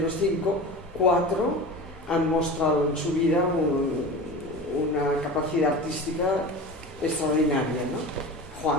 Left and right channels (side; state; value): both; normal; correlation 0.32